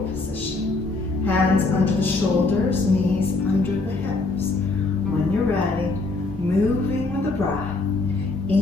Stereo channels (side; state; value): right; quieter; 3.5 dB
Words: position. Hands under the shoulders, knees under the hips. When you're ready, moving with the breath.